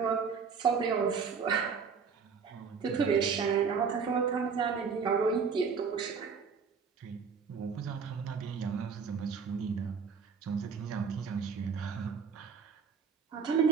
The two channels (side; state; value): left; quieter; 5.9 dB